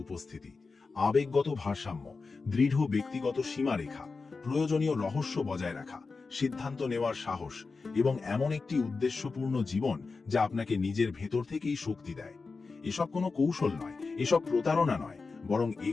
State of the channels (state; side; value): quieter; right; 4.3 dB